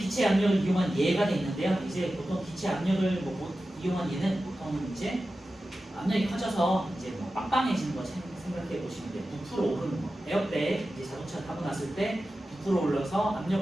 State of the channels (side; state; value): both; normal; correlation 0.93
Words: 압력을 이용한 예가 돼 있는데요. 이제 보통 기체 압력을 이용한 예는 보통 이제 압력이 커져서 이제 뭐 빵빵해지는 거 생각해 보시면 돼요. 부풀어 오르는 거. 에어백 이제 자동차 타고 났을 때 부풀어 올라서